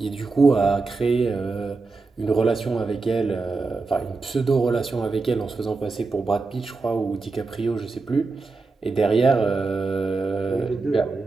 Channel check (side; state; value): left; quieter; 3.9 dB